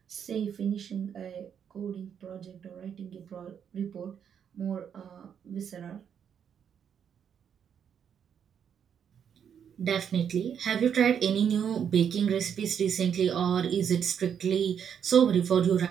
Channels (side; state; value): left; quieter; 8.1 dB